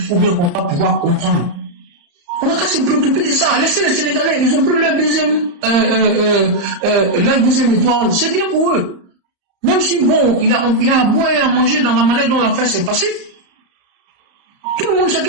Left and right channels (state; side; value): late; left; 34 ms